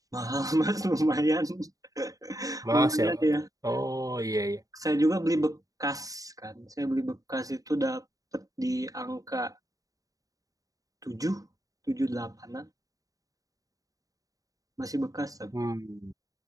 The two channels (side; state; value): left; late; 0.17 ms